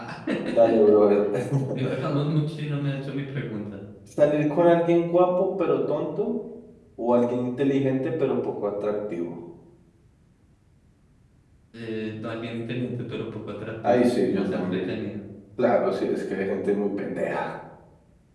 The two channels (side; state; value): both; identical; correlation 1.00